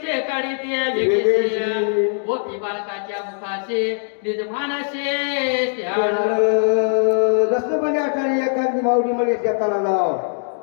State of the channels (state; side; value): silent; right; digital silence